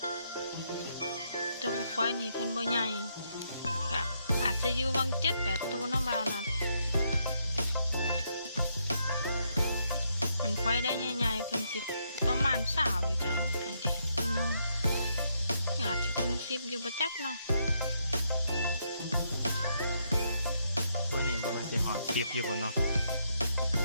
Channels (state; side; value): inverted; both; correlation -0.76